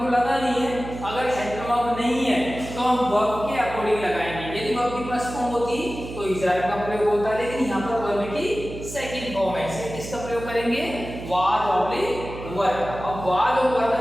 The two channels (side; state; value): right; noise; hum, 11 dB below the sound